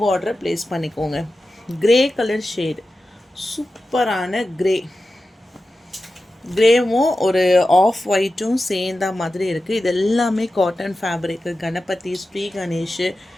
ஆர்டரை ப்ளேஸ் பண்ணிக்கோங்க. க்ரே கலர் ஷேடு, சூப்பரான க்ரே. க்ரேவும் ஒரு ஆஃப் ஒயிட்டும் சேர்ந்த மாதிரி இருக்குது. இது எல்லாமே காட்டன் ஃபேப்ரிக்கு. கணபதி, ஸ்ரீ கணேஷ்,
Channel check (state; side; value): normal; both; correlation 0.93